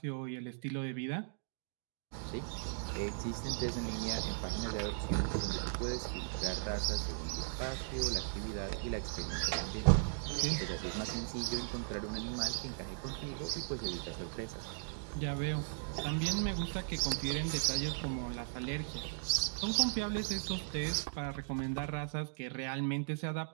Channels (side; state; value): left; silent; digital silence